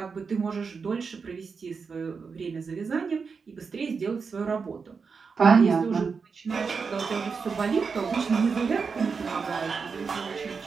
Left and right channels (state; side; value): quieter; left; 5.3 dB